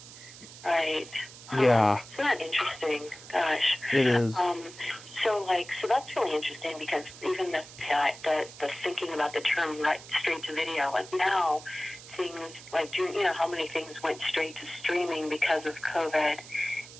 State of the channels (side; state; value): right; noise; hiss, 17 dB below the sound